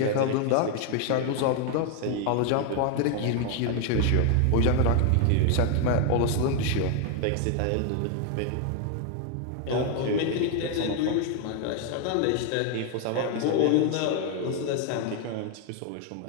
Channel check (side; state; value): both; different; correlation 0.01